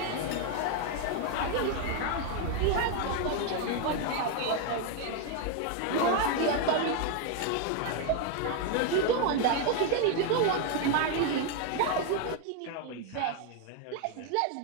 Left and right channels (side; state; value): both; different; correlation 0.01